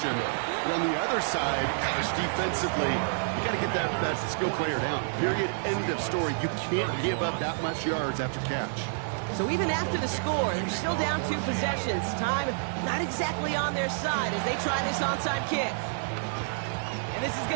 But on the other side, gosh, defensively, you got to get that skill player down. Period. End of story. You can't give up that much yards after catch. So even after the score, they're still down 2 possessions. Time not exactly on their side as they try this onside kick. And this is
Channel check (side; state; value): left; silent; digital silence